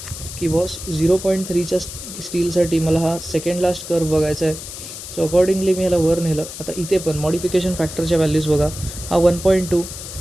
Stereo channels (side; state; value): left; noise; hiss, 11 dB below the sound